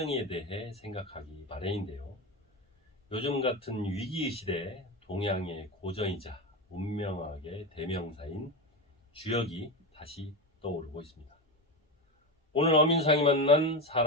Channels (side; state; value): both; normal; correlation 0.18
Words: 대해 생각하기 마련인데요. 요즘 같은 위기의 시대에 동양의 고전이자 운명학의 대명사인 주역이 다시 떠오르고 있습니다. 오늘 어민상이 만난